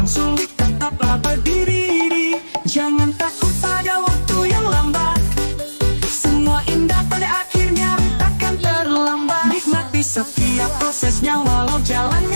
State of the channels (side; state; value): both; inverted; correlation -1.00